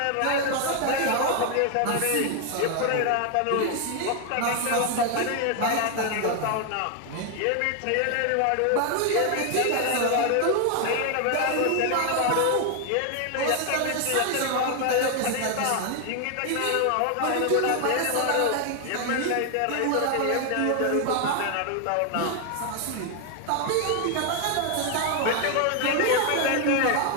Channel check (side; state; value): both; different; correlation 0.01